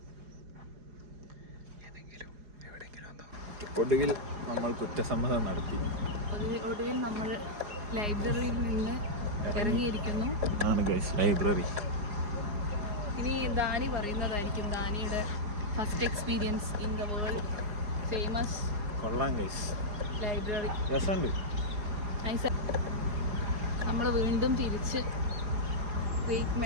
ഏതെങ്കിലും എവിടെയെങ്കിലും ഒന്നോ. ഒടുവിൽ നമ്മൾ കുറ്റസമ്മതം നടത്തി. ഒടുവിൽ നമ്മൾ ലൈബ്രറിയിൽ നിന്ന് ഇറങ്ങിയിരിക്കുന്നു. ലൈബ്രറി. ഇനി ദാനി പറയുന്നതായിരിക്കും ദാനിയുടെ first experience in the world famous. കൊള്ളാം ഗൈസ്, ലൈബ്രറി രസമുണ്ട്. നമ്മൾ വീണ്ടും തിരിച്ച് ഗ്രേറ്റ്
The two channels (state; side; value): late; left; 4.8 ms